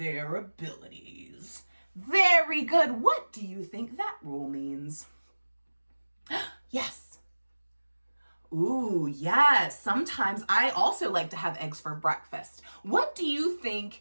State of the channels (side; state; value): both; inverted; correlation -1.00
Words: abilities. Very good. What do you think that rule means? Yes. Ooh, yes. Sometimes I also like to have eggs for breakfast. What do you